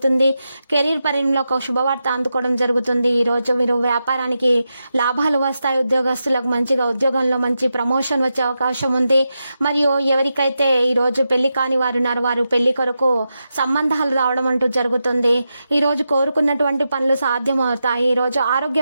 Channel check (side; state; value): both; inverted; correlation -0.88